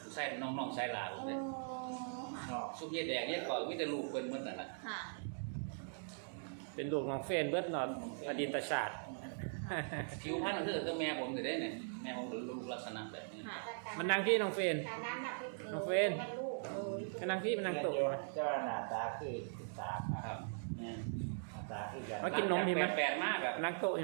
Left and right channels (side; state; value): left; silent; digital silence